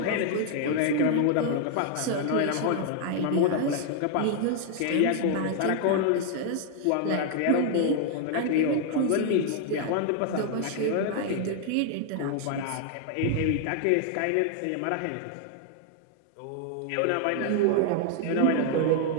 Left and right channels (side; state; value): both; different; correlation 0.00